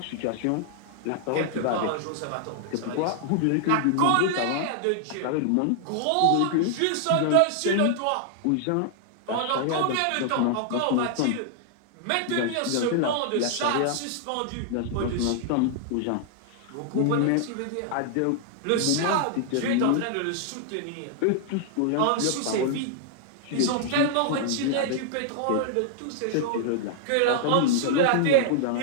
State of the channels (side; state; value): both; different; correlation 0.00